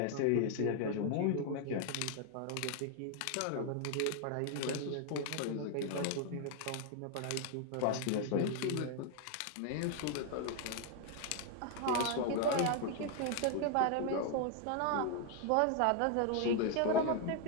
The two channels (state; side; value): different; both; correlation 0.00